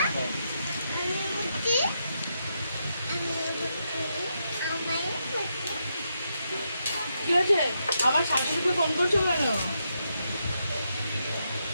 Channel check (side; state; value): both; inverted; correlation -0.82